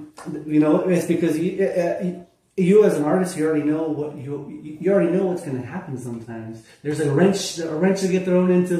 You know, it's because you as an artist, you already know what you already know what's going to happen. Sometimes there's a wrench to get thrown into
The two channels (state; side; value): identical; both; correlation 1.00